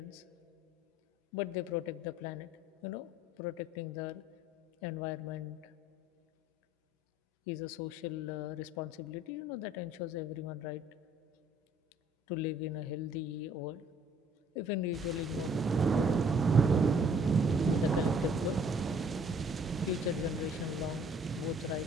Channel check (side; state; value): both; normal; correlation 0.59